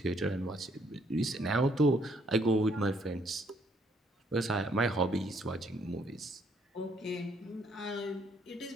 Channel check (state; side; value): normal; both; correlation 0.67